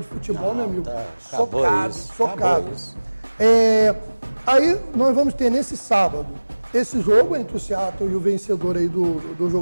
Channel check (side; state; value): both; inverted; correlation -1.00